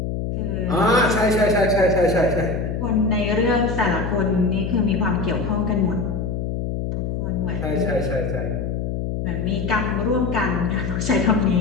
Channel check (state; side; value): noise; left; hum, 3 dB below the sound